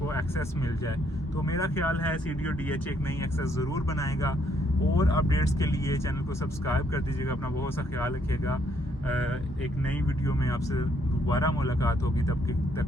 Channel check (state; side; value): normal; both; correlation 0.70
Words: एक्सेस मिल जाए। तो मेरा ख्याल है CDO-DH एक नई एक्सेस ज़रूर बनाएगा। और अपडेट्स के लिए चैनल को सब्सक्राइब कर दीजिएगा। अपना बहुत सा ख्याल रखिएगा। एक नई वीडियो में आपसे दोबारा मुलाकात होगी, तब